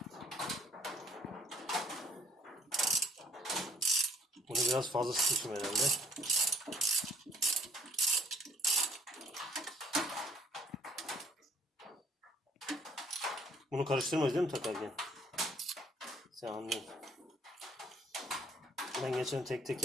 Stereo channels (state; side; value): normal; both; correlation 0.61